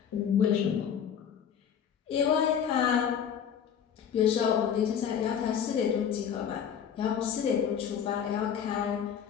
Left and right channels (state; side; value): quieter; right; 8.2 dB